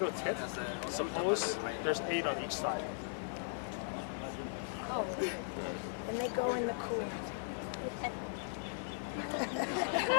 tip. Suppose there's 8 on each side. Oh, and they go in the cool.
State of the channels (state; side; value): silent; right; digital silence